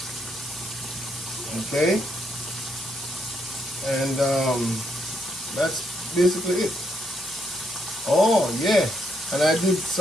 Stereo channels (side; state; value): both; normal; correlation 0.77